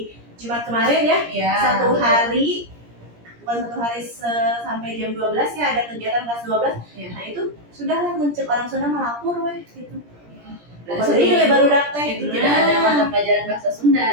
Jumat kemarin ya, satu hari sampai jam 12 ya ada kegiatan kelas 12. Nah itu sudahlah muncul orang Sunda melapor weh gitu. Jadi baru daftar itu tidak ada mata pelajaran bahasa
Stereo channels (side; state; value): left; late; 17 ms